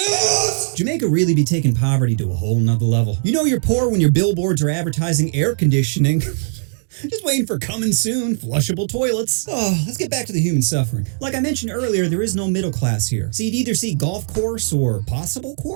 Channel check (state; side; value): silent; left; digital silence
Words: Jamaica really be taking poverty to a whole nother level. You know you're poor when your billboards are advertising air conditioning. Just waiting for coming soon, flushable toilets. Oh, let's get back to the human suffering. Like I mentioned earlier, there is no middle class here. So you'd either see golf course or possible